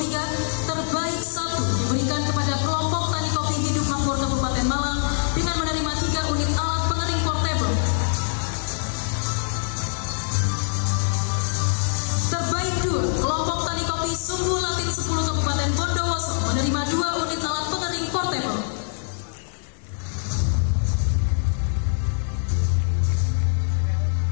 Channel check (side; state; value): right; silent; digital silence